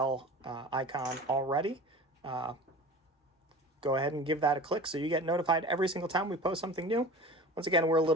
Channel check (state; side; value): normal; both; correlation 0.37